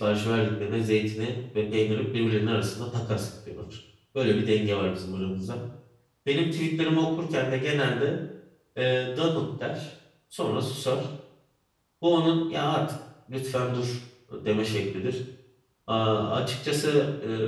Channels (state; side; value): identical; both; correlation 1.00